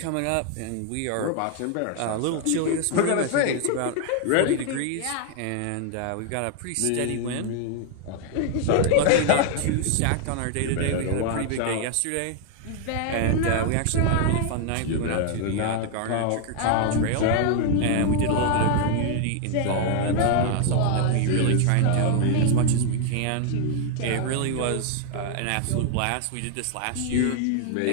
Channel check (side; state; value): both; different; correlation 0.00